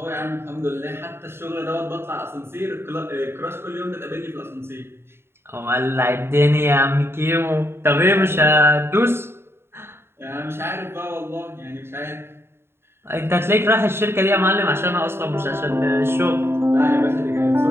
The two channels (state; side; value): late; left; 0.11 ms